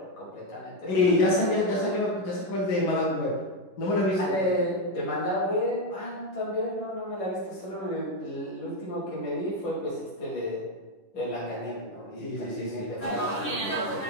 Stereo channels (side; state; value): right; late; 10 ms